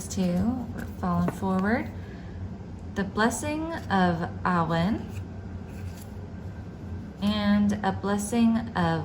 two, we're falling forward. The blessing of Awen and a blessing of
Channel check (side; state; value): both; identical; correlation 1.00